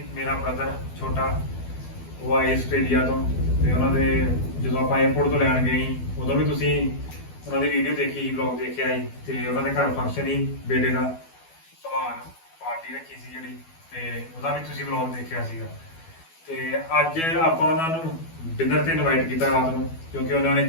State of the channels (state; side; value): late; right; 12 ms